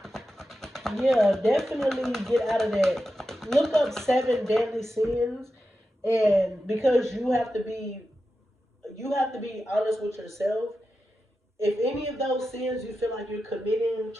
yeah, definitely get out of that. Look up 7 deadly sins. And because you have to be honest with yourself, If any of those sins you feel like you're committing,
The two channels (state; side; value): normal; both; correlation 0.91